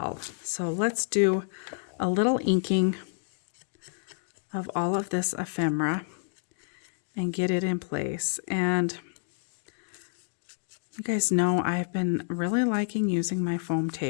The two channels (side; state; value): right; silent; digital silence